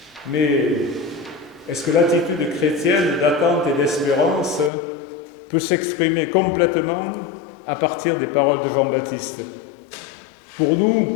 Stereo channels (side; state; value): right; drops out; at 4.7 s